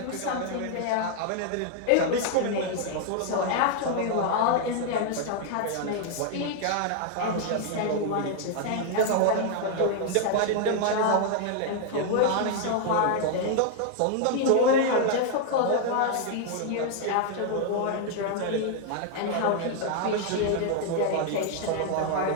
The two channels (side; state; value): both; different; correlation 0.00